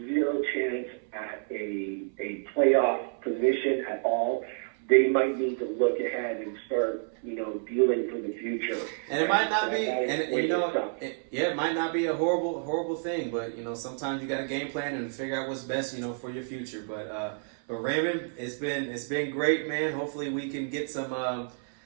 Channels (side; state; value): left; silent; 58 dB below the other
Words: zero chance at a playoff position at all, they might need to look ahead and start, dealing for the future. And it might not be, it might not be a horrible thing, but sometimes you got to game plan and figure out what's best, for your future. But Raymond, it's been great, man. Hopefully we can get some